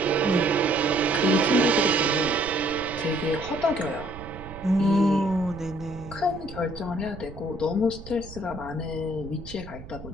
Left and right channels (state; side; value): noise; right; rumble, 14 dB below the sound